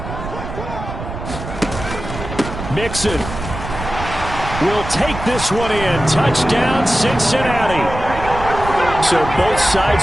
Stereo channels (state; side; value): noise; right; rumble, 9 dB below the sound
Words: Mixon will take this one in. Touchdown, Cincinnati. So both sides